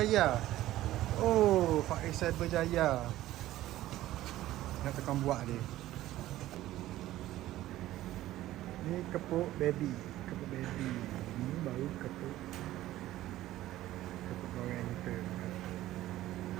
Oh, Faiz Cyberjaya. Nak tekan buat dia. Ni kepuk baby. Ni baru kepuk orang kita.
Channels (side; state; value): left; quieter; 15.0 dB